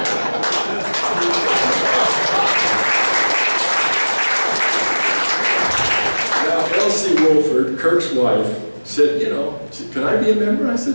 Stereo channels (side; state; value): both; inverted; correlation -1.00